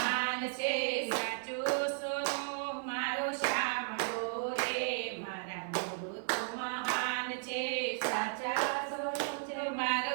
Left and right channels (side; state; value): left; silent; 55 dB below the other